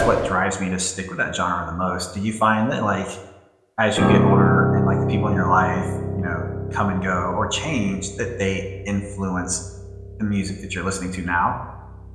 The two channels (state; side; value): identical; both; correlation 1.00